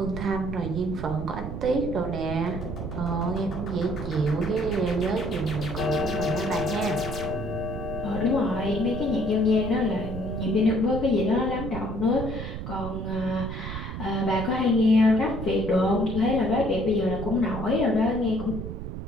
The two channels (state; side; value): noise; right; rumble, 7 dB below the sound